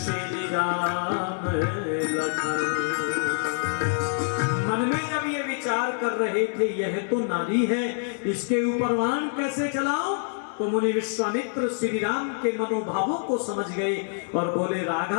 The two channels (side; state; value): right; silent; digital silence